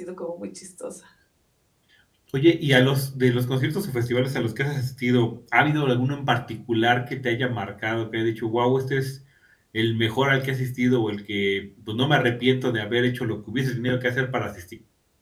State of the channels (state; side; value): identical; both; correlation 1.00